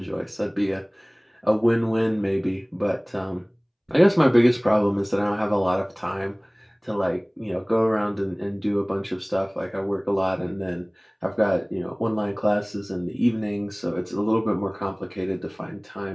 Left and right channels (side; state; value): both; identical; correlation 1.00